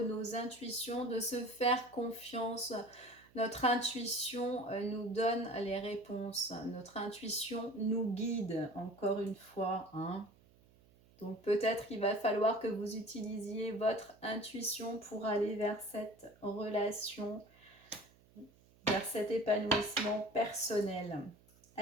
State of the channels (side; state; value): right; noise; hum, 28 dB below the sound